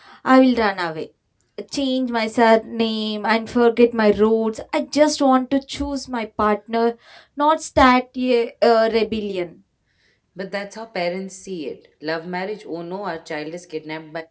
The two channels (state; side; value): identical; both; correlation 1.00